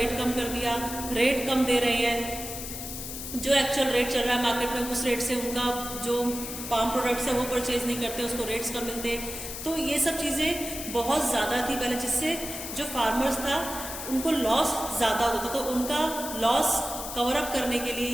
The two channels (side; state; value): left; noise; hiss, 8 dB below the sound